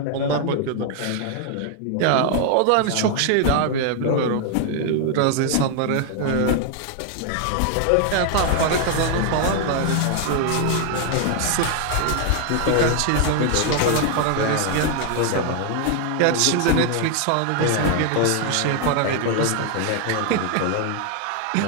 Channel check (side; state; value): both; different; correlation 0.00